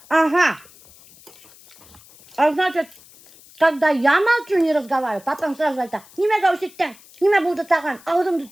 Ага. А значит, когда я молчу, не разговариваю, потом сразу это, неме гауситтен, неме буду таган, аудымды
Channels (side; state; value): left; noise; hiss, 24 dB below the sound